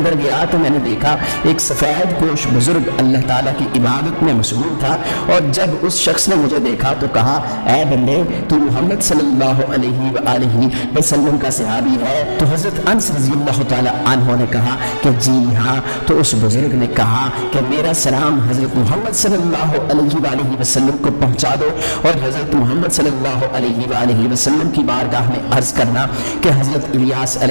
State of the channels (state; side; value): inverted; both; correlation -1.00